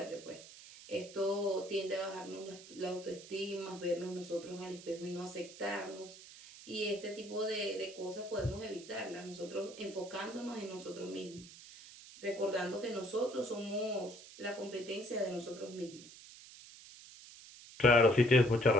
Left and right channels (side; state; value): right; noise; hiss, 17 dB below the sound